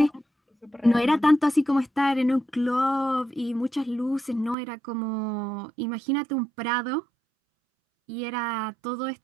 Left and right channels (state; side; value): drops out; left; at 4.5 s